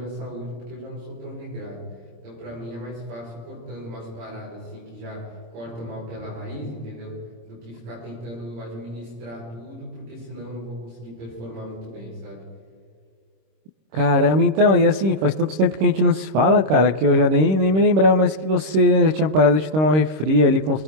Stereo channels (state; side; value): late; left; 26 ms